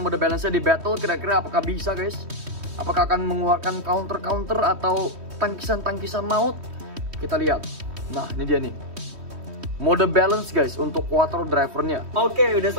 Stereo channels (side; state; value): left; late; 3.1 ms